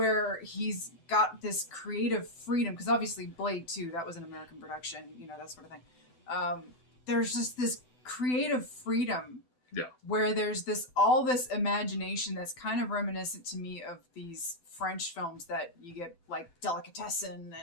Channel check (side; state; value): right; late; 8.0 ms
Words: he's got this creative freedom, because obviously Blade 2, that was an American production, that sort of thing. There's just this creative freedom. Yeah. Where there's all this imagination that's kind of reminiscent to me of these French films that you get, like Delicatessen